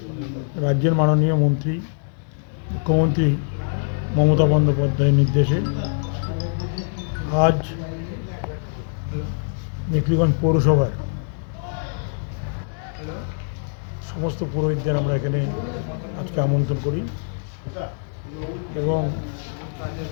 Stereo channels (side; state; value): right; silent; digital silence